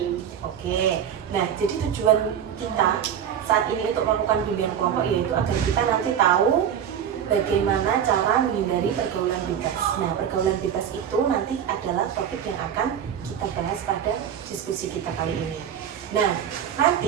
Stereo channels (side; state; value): left; quieter; 8.9 dB